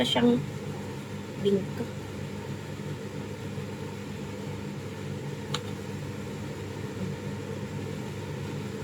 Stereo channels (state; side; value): identical; both; correlation 1.00